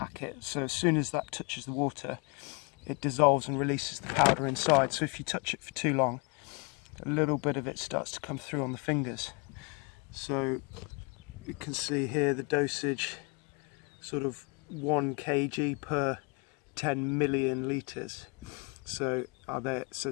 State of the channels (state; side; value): quieter; right; 31.7 dB